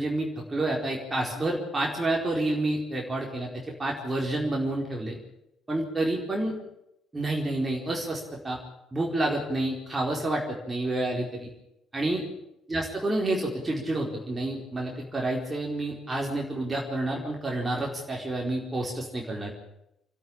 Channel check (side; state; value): both; normal; correlation 0.85